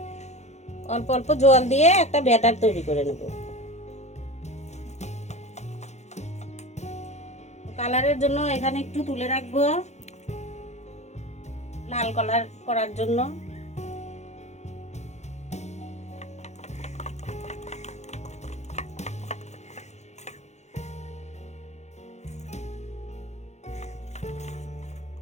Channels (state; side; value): late; right; 0.33 ms